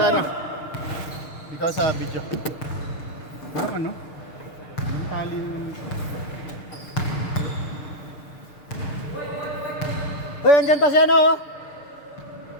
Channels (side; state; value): right; late; 6.6 ms